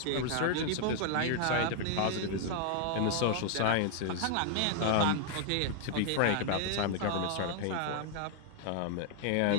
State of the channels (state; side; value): different; both; correlation 0.00